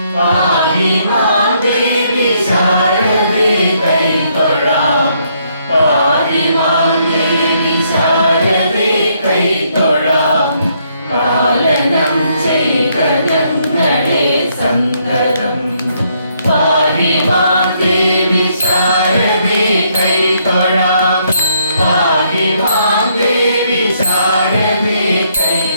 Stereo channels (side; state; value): both; inverted; correlation -0.72